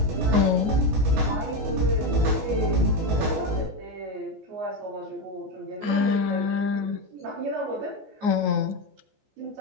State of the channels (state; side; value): late; left; 14 ms